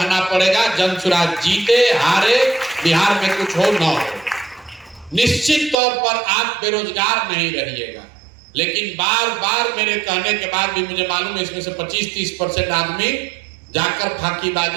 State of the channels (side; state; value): left; drops out; at 5.8 s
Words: पड़ेगा। जन सुराज जीते हारे, बिहार में कुछ हो न हो, निश्चित तौर पर आप बेरोजगार नहीं रहिएगा। लेकिन बार बार मेरे कहने के बाद भी मुझे मालूम है इसमें से 25-30% आदमी जाकर